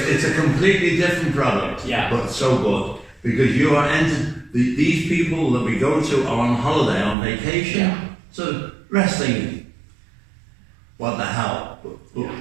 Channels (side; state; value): left; drops out; at 7.2 s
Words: a completely different product, but so good. Because you are these people that we go to are on holiday, on vacation. Yeah. So wrestling, what the hell? But